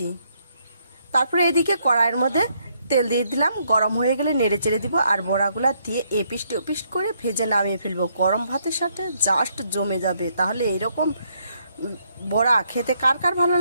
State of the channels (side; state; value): both; inverted; correlation -0.72